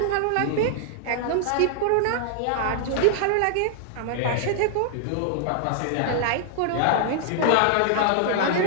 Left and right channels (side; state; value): both; different; correlation -0.01